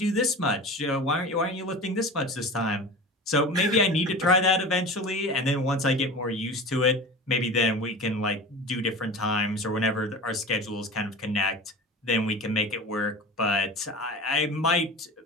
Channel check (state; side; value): normal; both; correlation 0.33